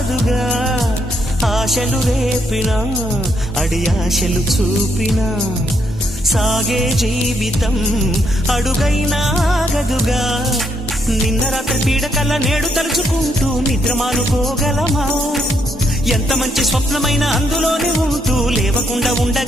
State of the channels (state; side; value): normal; both; correlation 0.75